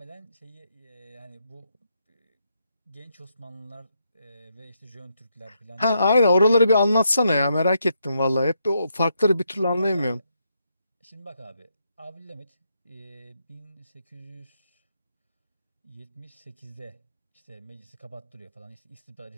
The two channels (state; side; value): inverted; both; correlation -0.80